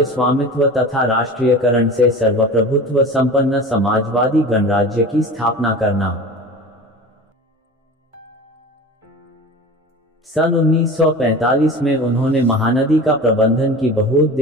स्वामित्व तथा राष्ट्रीयकरण से सर्वप्रभुत्व संपन्न समाजवादी गणराज्य की स्थापना करना। सन 1945 में उन्होंने महानदी का प्रबंधन की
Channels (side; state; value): both; normal; correlation 0.35